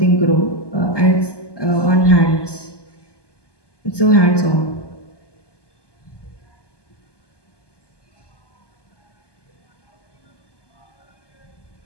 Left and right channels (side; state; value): right; late; 1.2 ms